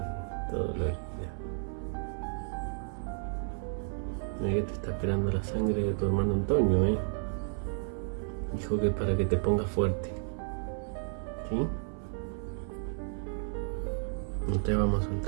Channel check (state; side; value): silent; left; 56 dB below the other